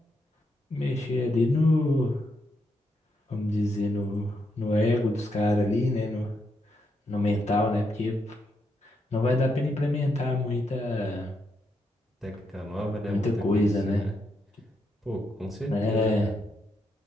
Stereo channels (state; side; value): normal; both; correlation 0.80